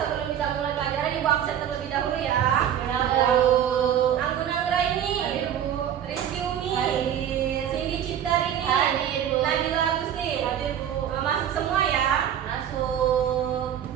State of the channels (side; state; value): left; quieter; 9.8 dB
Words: kita mulai pelajaran, Ibu absen terlebih dahulu ya. Ya, Bu. Anggun Anggraini, Hadir, Bu. Rizky Umi, Hadir. Cindy Ciptarini, Hadir, Bu. Nabila Agustin. Hadir, Bu. Masuk semua ya. Masuk.